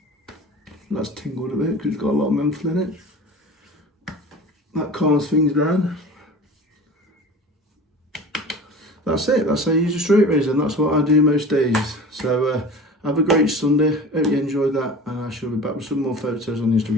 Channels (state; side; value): normal; both; correlation 0.37